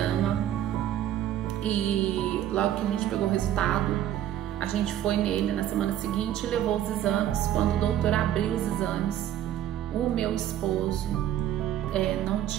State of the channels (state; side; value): quieter; left; 11.5 dB